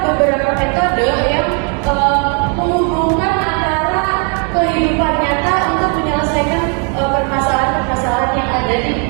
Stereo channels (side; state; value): left; quieter; 37.7 dB